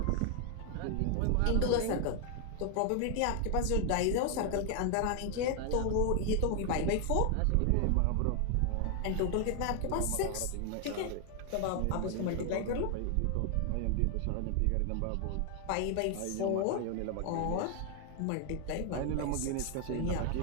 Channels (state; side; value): different; both; correlation 0.00